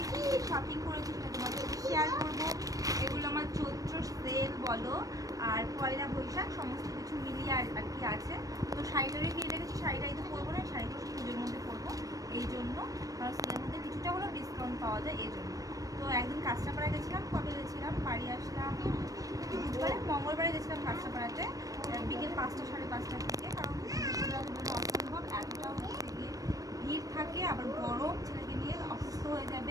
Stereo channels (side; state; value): left; late; 0.17 ms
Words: কি শপিং করেছি সেটা তোমাদের সাথে শেয়ার করবো। এগুলো আমার চৈত্র সেল বলো আর পয়লা বৈশাখ সমস্ত কিছু মিলিয়ে আর কি আছে। তো শাড়িটারই কিনে রেখেছি, শাড়িটাই তো পরবো না, শাড়িটা পুজোর মধ্যে পরবো এই জন্য, কারণ সেলের মধ্যে কিছুটা হলেও ডিসকাউন্ট পাওয়া যায় এই জন্য। তো একদিন কাঁচরাপাড়া গেছিলাম, কবে গেছিলাম, বাড়ি আসলাম বুধবারে, মঙ্গলবারে গেছিলাম কাঁচরাপাড়াতে বিকেল 5টা 5:30 থেকে, কারণ অসম্ভব এতটা হচ্ছে গিয়ে ভিড় থাকে, আবার গরম, ছেলেকে নিয়ে অসুস্থ হয়ে